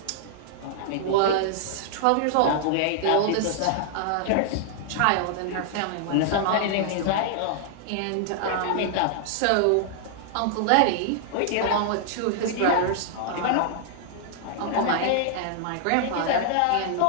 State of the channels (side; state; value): both; different; correlation -0.01